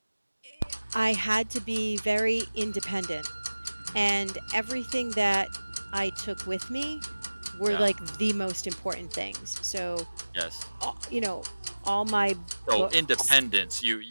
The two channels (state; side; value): inverted; both; correlation -1.00